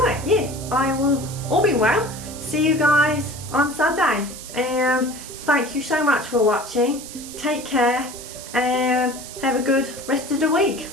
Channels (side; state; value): right; noise; hiss, 13 dB below the sound